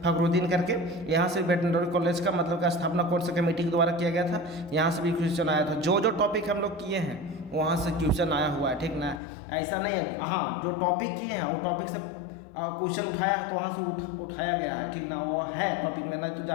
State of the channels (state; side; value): drops out; right; at 9.2 s